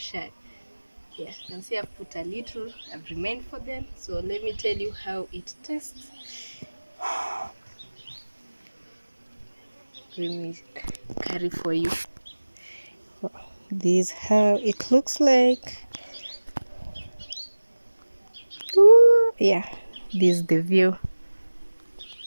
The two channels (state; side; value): inverted; both; correlation -1.00